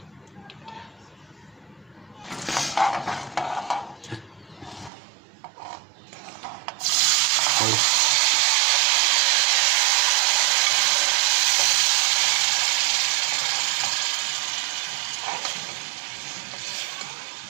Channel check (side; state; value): left; drops out; at 4.9 s